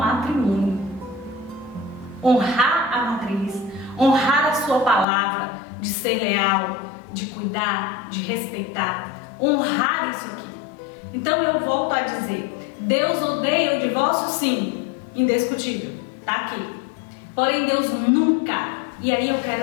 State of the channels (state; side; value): drops out; right; at 5.1 s